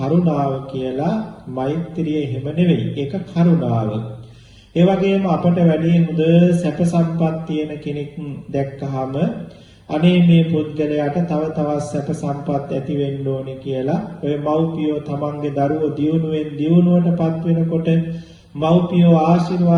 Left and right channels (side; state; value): both; identical; correlation 1.00